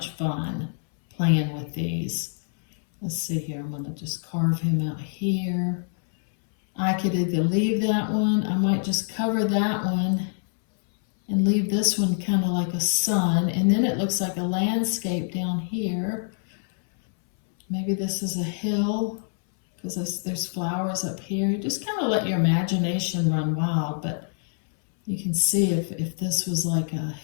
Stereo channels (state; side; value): silent; right; 62 dB below the other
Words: fun playing with these. Let's see here, I'm gonna just carve him out here. I could either leave that one, I might just cover that one and leave this one kind of like a sun, and then it looks like a landscape down here. Maybe this is a hill, because there's flowers up here. You just kind of let your imagination run wild, but you can see if this was like